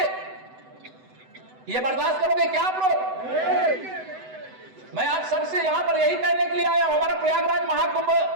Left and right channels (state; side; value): late; left; 7.9 ms